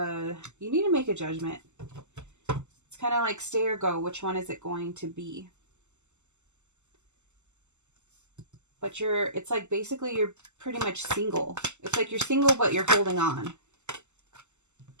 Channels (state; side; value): late; left; 0.83 ms